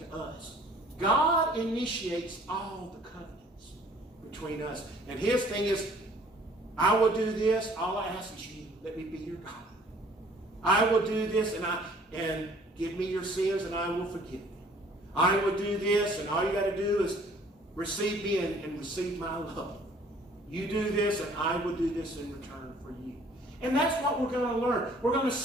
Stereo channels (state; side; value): normal; both; correlation 0.56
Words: us. God initiates all the covenants between us. And his thing is, I will do this. All I ask is you, let me be your God. I will do this and give me your sins and I will forgive them. I will do this, and all you got to do is receive me and receive my love. You do this, and I will do this in return for you. And that's what we're going to learn. We're going to